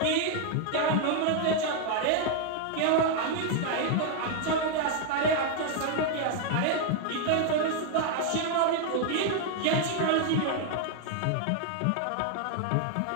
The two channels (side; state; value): both; different; correlation 0.00